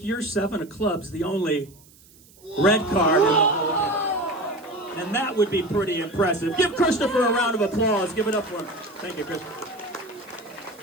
your 7 of clubs the only red card in the whole game. And that would be pretty impressive. Give Christopher a round of applause. Give it up for him. Thank you, Christopher.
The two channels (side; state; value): right; noise; hiss, 26 dB below the sound